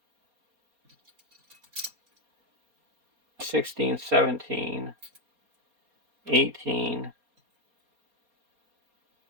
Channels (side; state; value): left; late; 4.2 ms